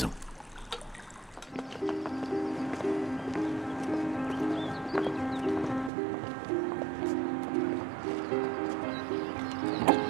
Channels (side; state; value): left; drops out; at 5.9 s